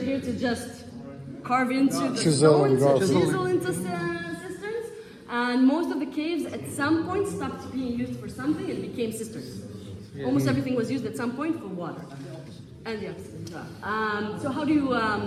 to just carve into the Chisel and stones, carve. chisel into cisterns. And most of the caves at some point stopped being used for something and became cisterns. Almost everything was used at some point for water. And the opposite. So how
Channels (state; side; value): identical; both; correlation 1.00